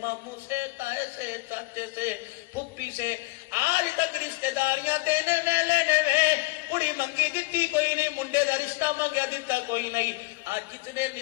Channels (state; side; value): quieter; right; 23.9 dB